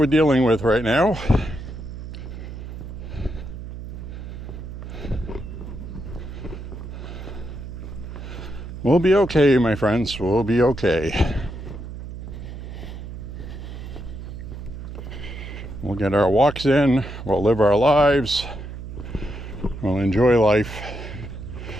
dealing with right now. We'll be okay, my friends. We'll be okay. We'll get our walks in. We'll live our lives. We'll enjoy life.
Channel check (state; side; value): noise; right; hum, 10 dB below the sound